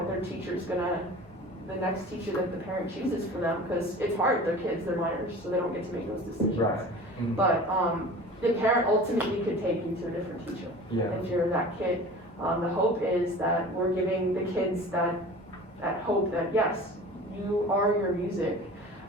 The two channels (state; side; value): normal; both; correlation 0.40